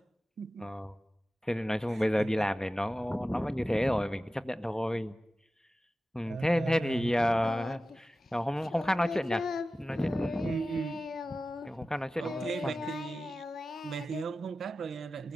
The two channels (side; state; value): both; normal; correlation 0.95